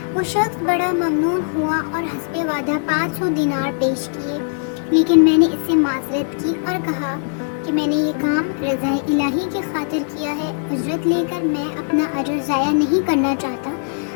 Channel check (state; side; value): silent; right; digital silence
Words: وہ شخص بڑا ممنون ہوا اور حسب وعدہ 500 دینار پیش کیے، لیکن میں نے اس سے معذرت کی اور کہا کہ میں نے یہ کام رضا الہی کی خاطر کیا ہے، اجرت لے کر میں اپنا اجر ضائع نہیں کرنا چاہتا۔